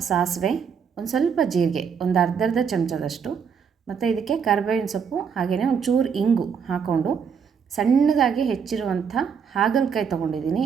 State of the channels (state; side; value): quieter; left; 6.7 dB